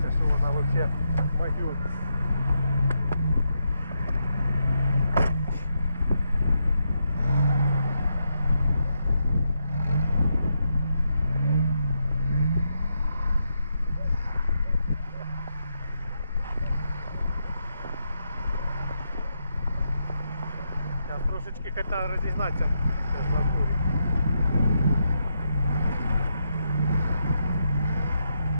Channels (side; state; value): both; inverted; correlation -0.82